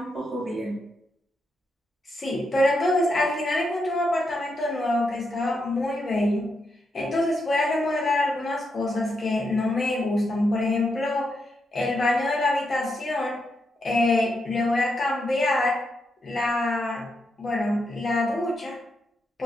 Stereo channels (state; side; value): normal; both; correlation 0.83